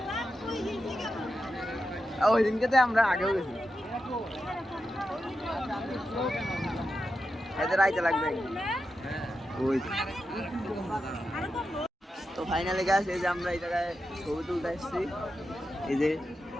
ওই দিনকে তো আমরা আগেও গেছি। এদের আইতে লাগবে ওই তো। ফাইনালি গাছ এই যে আমরা এই জায়গায় ছবি তুলতে আসছি। এই যে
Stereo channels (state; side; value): normal; both; correlation 0.89